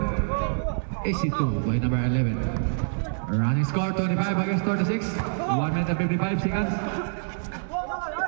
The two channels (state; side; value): silent; left; digital silence